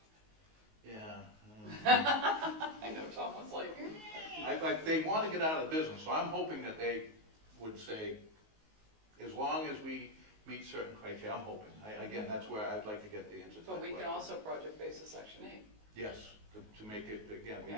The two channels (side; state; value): left; late; 19 ms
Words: Yeah. I know Tom was like, They want to get out of the business, so I'm hoping that they would say, as long as we meet certain criteria, I'm hoping. Again, that's where I'd like to get the answer to that but we can question. also project basis Section 8. Yes, to make it, again, we